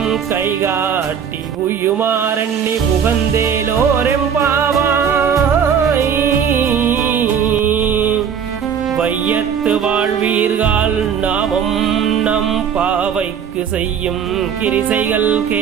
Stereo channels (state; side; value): quieter; left; 7.7 dB